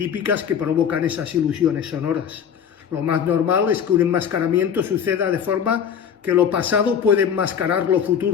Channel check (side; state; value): right; quieter; 7.9 dB